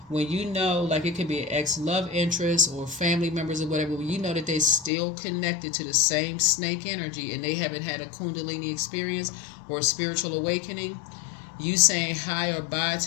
when like it could be an ex-love interest or family members or whatever, when you know that they're still connected to the same snake energy and they haven't had a Kundalini experience or a spiritual awakening, You saying hi or bye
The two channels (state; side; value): drops out; right; at 4.9 s